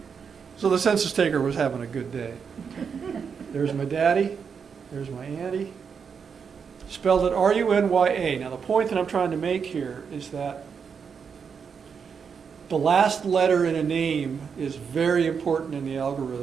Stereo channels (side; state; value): left; quieter; 6.4 dB